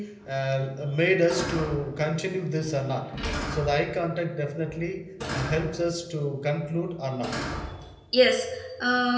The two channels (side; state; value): both; identical; correlation 1.00